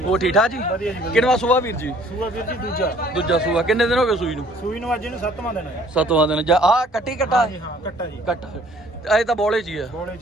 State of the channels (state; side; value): normal; both; correlation 0.57